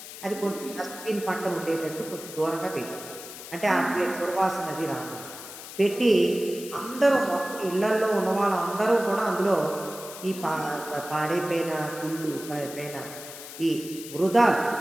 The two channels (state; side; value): noise; left; hiss, 13 dB below the sound